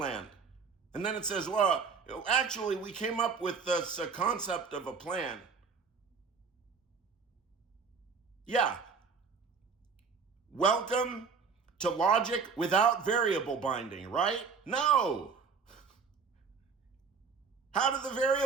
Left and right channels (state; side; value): quieter; left; 5.4 dB